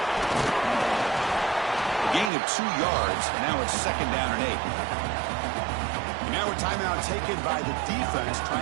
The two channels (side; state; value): left; drops out; at 2.3 s